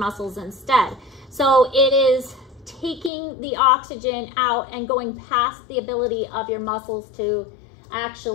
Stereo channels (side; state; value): right; drops out; at 3.1 s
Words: instead. So it is taking the oxygen out and going past the ability of your muscles to